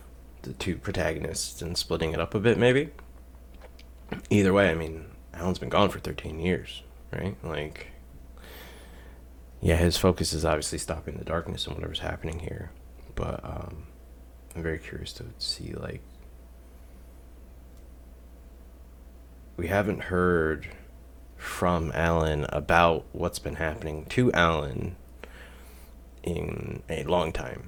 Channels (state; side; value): identical; both; correlation 1.00